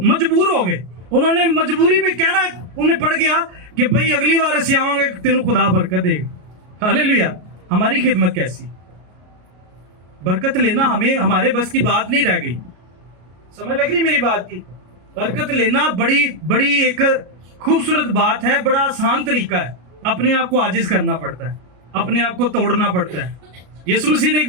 मजबूर हो गए। उन्होंने मजबूरी में कहना उन्हें पड़ गया कि भाई अगली बार ऐसे आओगे तेनों खुदा बरकत देगा। हालेलुया। हमारी खिदमत कैसी, बरकत लेना हमें हमारे बस की बात नहीं रह गई। समझ लग रही मेरी बात की? बरकत लेना बड़ी बड़ी एक खूबसूरत बात है, बड़ा आसान तरीका है। अपने आप को आजिज करना पड़ता है, अपने आप को तोड़ना पड़ता है। यीशु मसीह ने एक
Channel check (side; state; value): left; late; 33 ms